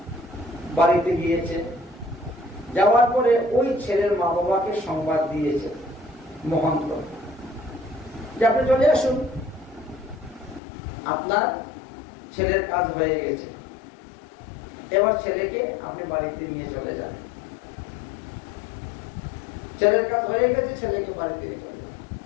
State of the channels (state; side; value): drops out; right; at 10.6 s